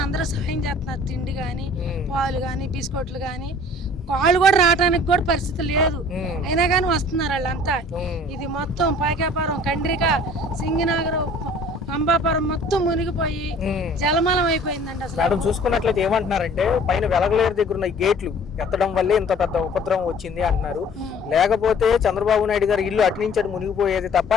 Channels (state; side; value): normal; both; correlation 0.50